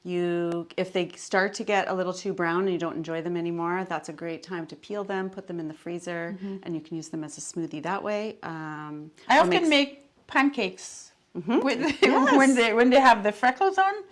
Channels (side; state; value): both; identical; correlation 1.00